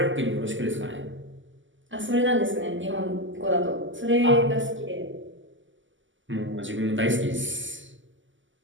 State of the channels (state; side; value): late; left; 0.55 ms